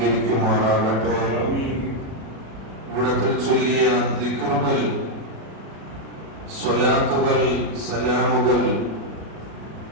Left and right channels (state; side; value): late; left; 36 ms